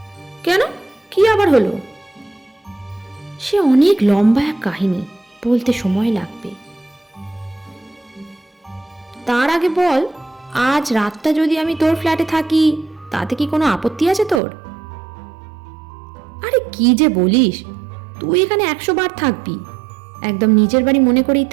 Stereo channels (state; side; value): drops out; left; at 14.4 s